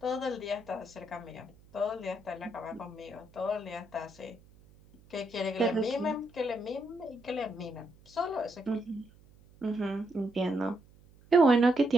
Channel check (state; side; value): noise; right; hum, 26 dB below the sound